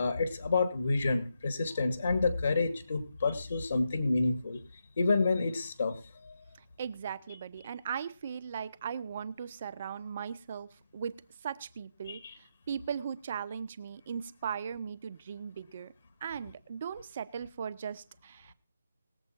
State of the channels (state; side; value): inverted; both; correlation -0.84